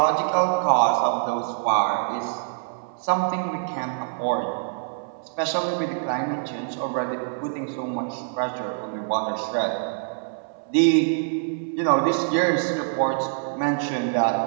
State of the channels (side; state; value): left; silent; 60 dB below the other